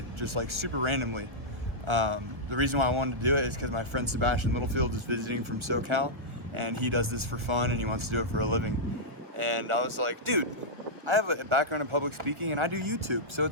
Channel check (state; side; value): late; left; 1.2 ms